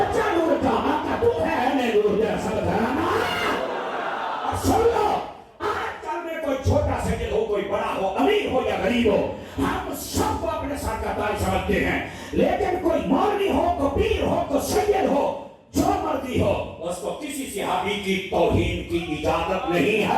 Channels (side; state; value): both; identical; correlation 1.00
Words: نور کا آقا تو ہے نے نور دے سب گھرانا. اور سن لو آج کل میں کوئی چھوٹا سجل ہو کوئی بڑا ہو امیر ہو یا غریب ہو ہم سب کو اپنے ساتھ کا تاج سمجھتے ہیں. لیکن کوئی مولوی ہو کوئی پیر ہو کوئی سید ہو جو مرضی ہو اس کو کسی صحابی کی توہین کی اجازت نہیں